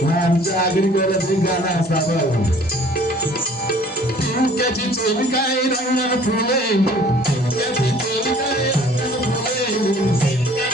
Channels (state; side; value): normal; both; correlation 0.53